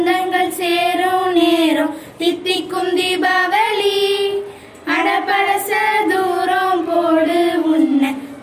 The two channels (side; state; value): both; identical; correlation 1.00